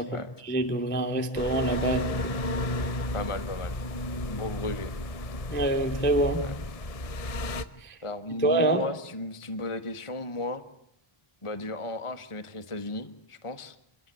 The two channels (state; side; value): late; right; 1.6 ms